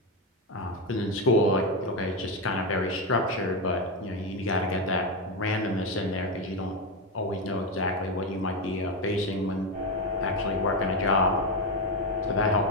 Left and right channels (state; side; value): normal; both; correlation 0.10